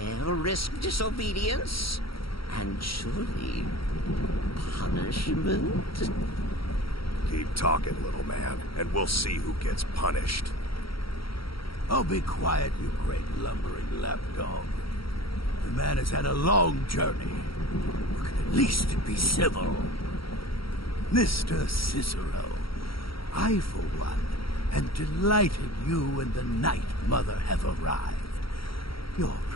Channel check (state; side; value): late; right; 0.75 ms